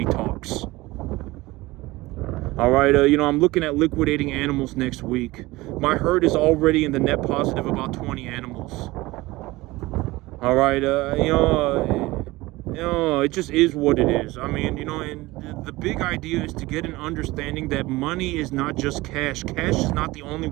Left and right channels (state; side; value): quieter; left; 20.0 dB